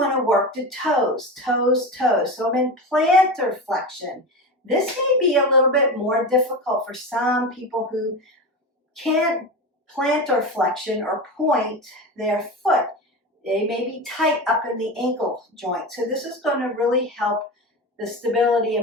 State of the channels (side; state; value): both; normal; correlation 0.24